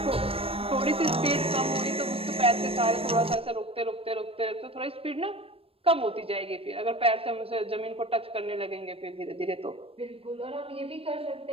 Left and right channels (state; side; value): late; left; 0.28 ms